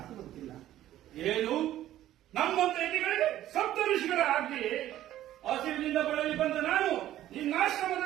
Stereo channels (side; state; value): left; quieter; 13.2 dB